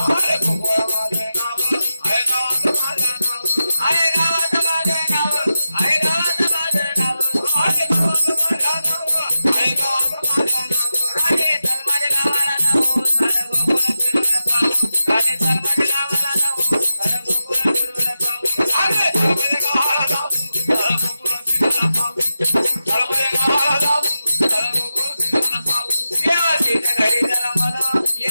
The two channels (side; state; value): both; inverted; correlation -0.91